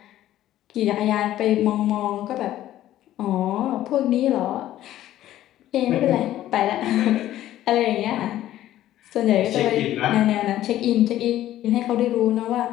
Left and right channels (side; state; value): right; quieter; 13.4 dB